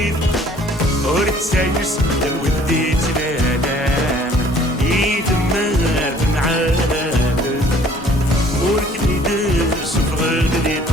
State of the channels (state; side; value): normal; both; correlation 0.55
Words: ورتسايس الودي تلالام يتمر في العالم وركني درس في غلدي